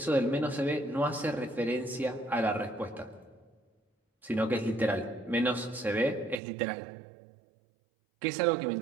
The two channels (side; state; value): left; drops out; at 6.4 s